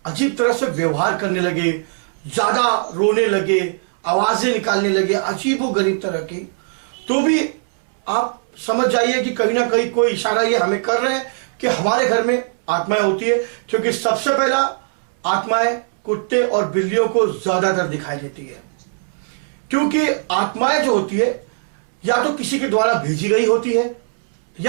अजीब तरह से व्यवहार करने लगे, ज्यादा रोने लगे, आवाजें निकालने लगे अजीबोगरीब तरह की, तो भी आप समझ जाइए कि कहीं ना कहीं कोई इशारा ये हमें कर रहे हैं कि हमारे घर में आत्माएं होती है। क्योंकि सबसे पहला आत्माएं कुत्ते और बिल्लियों को ज्यादातर दिखाई देती है, क्योंकि आत्माएं जो होती है या तो किसी के द्वारा भेजी गई होती है,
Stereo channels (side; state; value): left; silent; 65 dB below the other